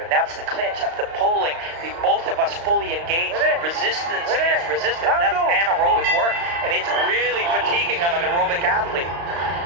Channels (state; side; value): late; left; 35 ms